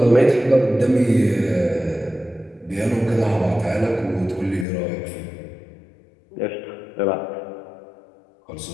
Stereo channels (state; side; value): drops out; right; at 4.7 s